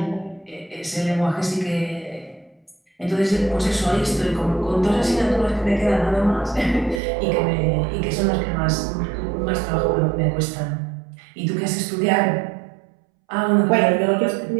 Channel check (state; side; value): drops out; left; at 7.0 s